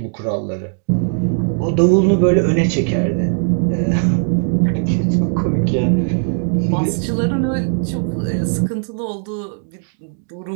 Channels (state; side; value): silent; left; 60 dB below the other